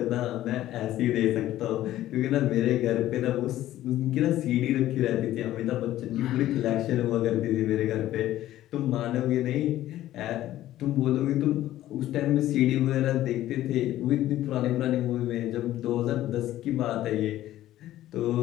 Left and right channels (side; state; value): right; quieter; 14.0 dB